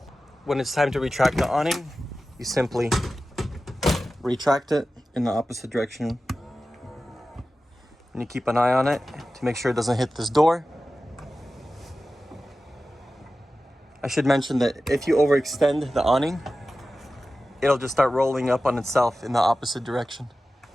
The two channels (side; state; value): both; normal; correlation 0.94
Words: When it's time to retract the awning, you simply retract it in the opposite direction. And you keep an eye on it to make sure it doesn't hit this door. I should mention that if you overextend the awning, it'll just start rolling up on itself in the opposite direction.